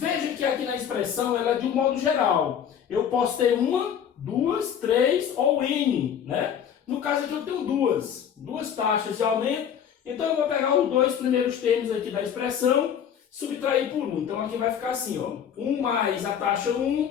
que aqui na expressão ela é de um modo geral. Eu posso ter 1, 2, 3 ou N, né? No caso aqui eu tenho duas taxas de aumento. Então eu vou pegar os 2 primeiros termos aqui da expressão, subtrair por 1. Então aqui vai ficar assim, ó. 1 mais a taxa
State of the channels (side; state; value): right; quieter; 8.6 dB